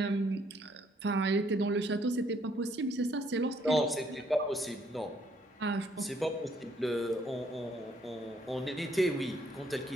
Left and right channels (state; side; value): normal; both; correlation 0.67